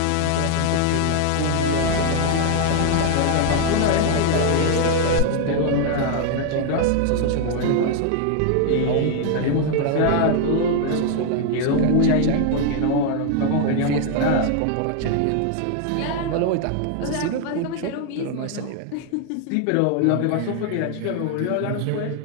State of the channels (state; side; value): different; both; correlation 0.00